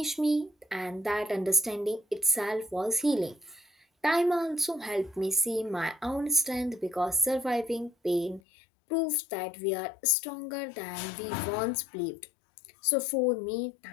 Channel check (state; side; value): drops out; right; at 8.4 s